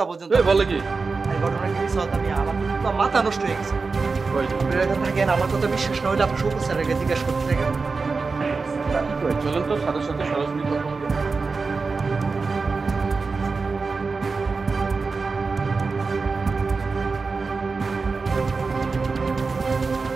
পর্যন্ত। বলে কি? এই ঘটনা কি মিস হতো? আমি আমার তো পুরো মাথা নষ্ট হয়ে গেছে। আপনারা এখানে থাকেন, আমার কথা বিশ্বাস না হলে আপনি শৌকত স্যারকে জিজ্ঞাসা করতে থাকেন। চলেন তো সাথে সাথে সরাসরি কথা বলবো।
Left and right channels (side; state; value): left; quieter; 4.3 dB